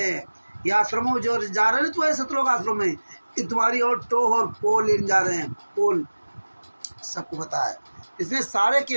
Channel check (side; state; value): both; inverted; correlation -1.00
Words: हैं। ये आश्रमों में जो जा रहे हैं, तो सतलोक आश्रम में कि तुम्हारी और टो और पोल लेने जा रहे हैं। पोल सबको पता है। इसमें सारे